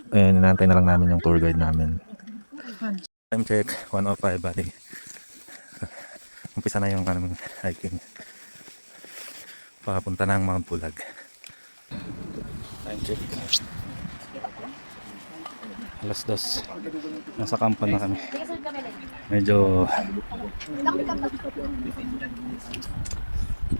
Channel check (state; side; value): inverted; both; correlation -1.00